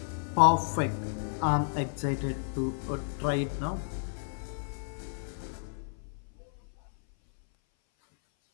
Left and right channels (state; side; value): silent; right; 57 dB below the other